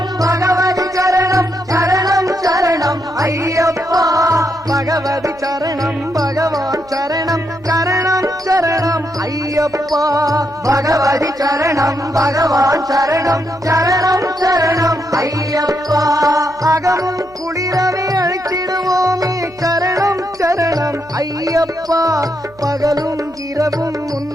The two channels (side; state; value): right; noise; hum, 26 dB below the sound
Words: பகவதி சரணம் சரணம் சரணம் ஐயப்பா பகவதி சரணம் பகவான் சரணம் சரணம் சரணம் ஐயப்பா பகவதி சரணம் பகவான் சரணம் சரணம் சரணம் ஐயப்பா அகமும் குளிரவே அழைச்சிடுவோமே சரணம் சரணம் ஐயப்பா பகலும் இரவும்